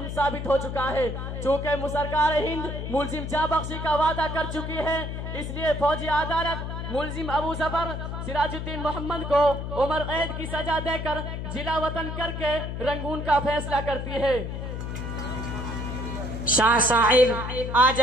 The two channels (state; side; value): noise; left; hum, 5 dB below the sound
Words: साबित हो चुका है। चूँकि सरकार हिंद मुलजिम जाबख्शी का वादा कर चुकी है, इसलिए फौजी अदालत मुलजिम अबू जफर सिराजुद्दीन मोहम्मद को उम्र कैद की सजा देकर जिला वतन करके रंगून का फैसला करती है। शाह साहिब, आज